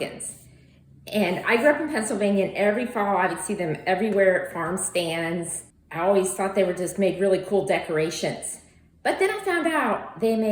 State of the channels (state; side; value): identical; both; correlation 1.00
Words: And I grew up in Pennsylvania, and every fall I would see them everywhere at farm stands. I always thought they were just made really cool decorations. But then I found out they